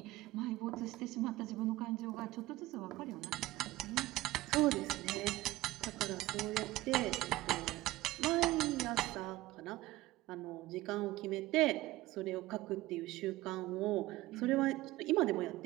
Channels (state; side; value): quieter; left; 17.8 dB